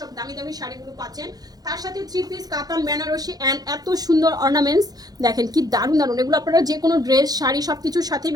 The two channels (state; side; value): late; left; 0.19 ms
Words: সব দামি দামি শাড়িগুলো পাচ্ছেন। তার সাথে 3 পিস কাতান বেনারসি অ্যান্ড এত সুন্দর অর্নামেন্টস দেখেন কি দারুণ দারুণ। এগুলো আপনারা যে কোনো ড্রেস শাড়ি সব কিছুর সাথে